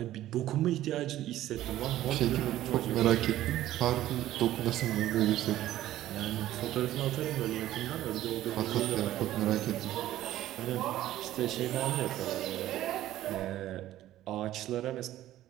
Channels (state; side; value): quieter; left; 13.9 dB